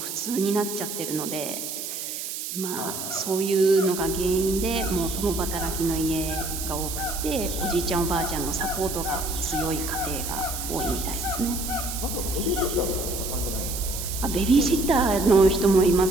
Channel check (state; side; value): noise; right; hiss, 6 dB below the sound